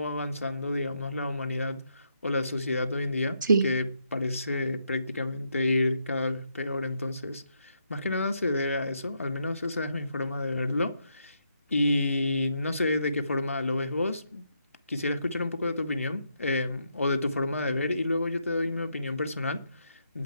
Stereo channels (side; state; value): both; inverted; correlation -0.78